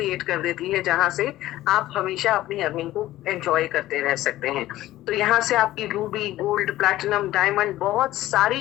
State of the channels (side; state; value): right; quieter; 15.3 dB